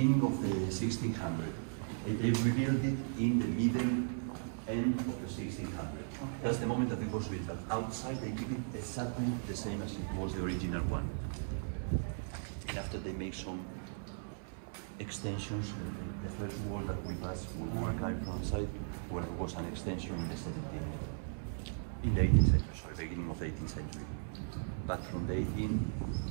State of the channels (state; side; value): silent; left; 53 dB below the other